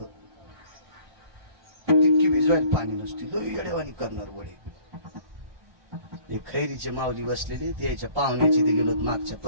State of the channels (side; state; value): left; late; 1.3 ms